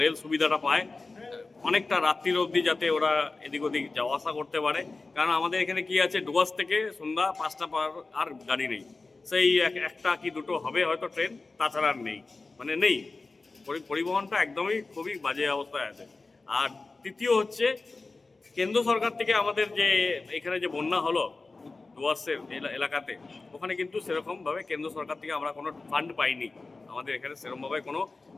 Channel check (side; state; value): right; quieter; 3.7 dB